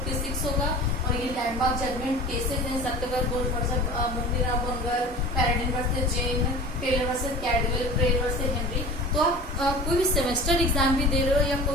होगा और ये लैंडमार्क जजमेंट केसेस हैं, Satyabrata Ghose versus Mugneeram Bangur, Paradine versus Jane, Taylor versus Caldwell, Prayer versus Henry. तो आप कोई भी सेमेस्टर एग्जाम भी दे रहे हो या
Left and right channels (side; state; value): both; normal; correlation 0.38